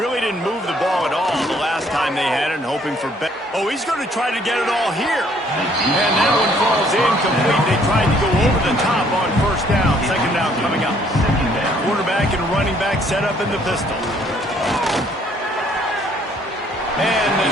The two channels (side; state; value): both; normal; correlation 0.63